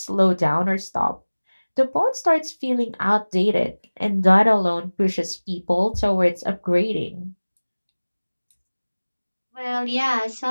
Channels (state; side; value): inverted; both; correlation -1.00